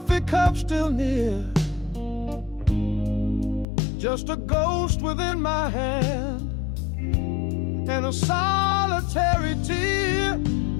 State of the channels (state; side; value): drops out; right; at 3.7 s